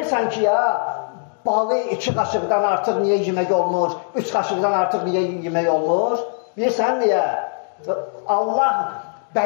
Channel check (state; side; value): silent; right; 65 dB below the other